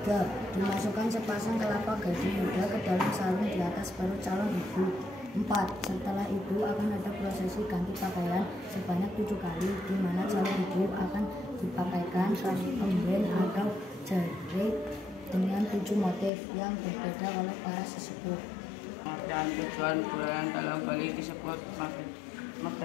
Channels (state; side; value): drops out; right; at 16.3 s